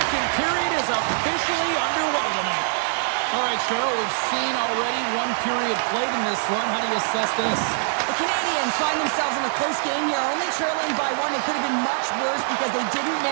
period is officially underway tonight. All right, Cheryl, we've seen already one period played in this one. How do you assess this? The Canadiens find themselves in a close game here, only trailing by 1. It could have been much worse because they didn't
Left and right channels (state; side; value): silent; left; digital silence